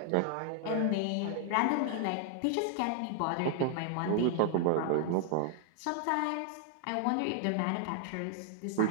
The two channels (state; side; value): different; both; correlation 0.00